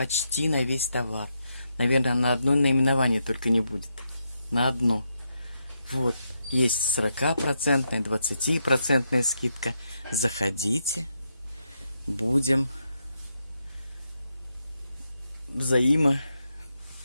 на весь товар. Наверное, на одно наименование только не будет. На одно. Вот. Есть 40%, 20% скидка. Заходите. Будем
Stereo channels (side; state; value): both; inverted; correlation -0.82